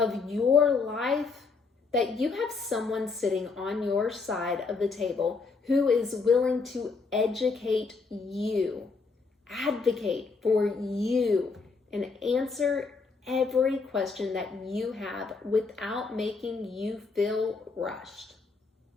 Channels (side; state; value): right; quieter; 4.4 dB